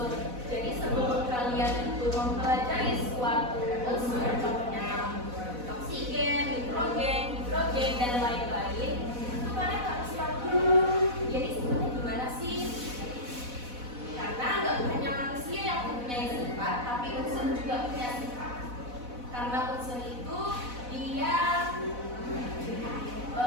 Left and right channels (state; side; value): late; left; 4.1 ms